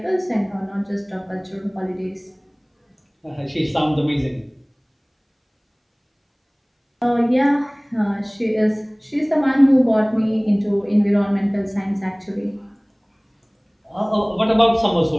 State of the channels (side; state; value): both; identical; correlation 1.00